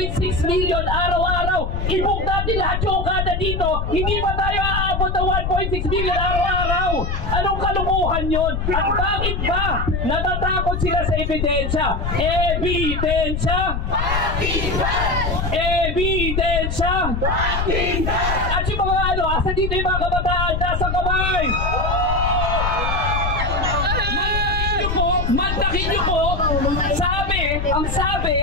million araw-araw. I-book natin lahat yung kada dito. Hindi pa tayo aabot ng 1.6 million araw-araw. Anong kalukuhan yun? At bakit ba natatakot sila sa ebidensya? Ebidensya! Ebidensya! At yung mga asa dito yung mga kabataan, nasa kamay! Mantakin niyo po, ang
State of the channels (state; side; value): noise; left; rumble, 2 dB below the sound